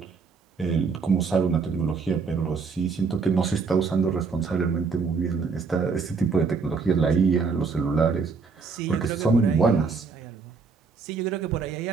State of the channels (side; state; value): left; quieter; 4.9 dB